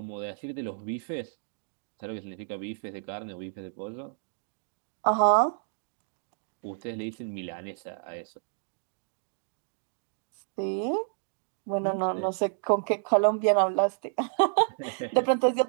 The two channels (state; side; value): silent; left; digital silence